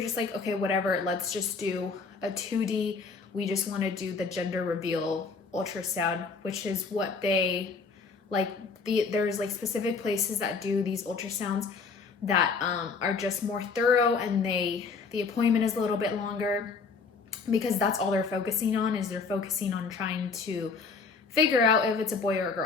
like, okay, whatever, let's just do a 2D. We just want to do the gender reveal ultrasound, which is what they like. There's like specific places that do these ultrasounds that are just more thorough, and the appointment is a little bit longer because that's all they're focusing on, is they're focusing on trying to figure out if it's a boy or a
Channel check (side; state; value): right; quieter; 4.8 dB